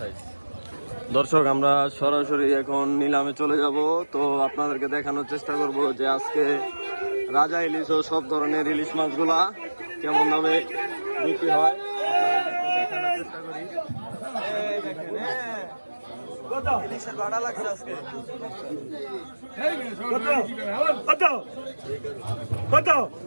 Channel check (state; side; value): inverted; both; correlation -1.00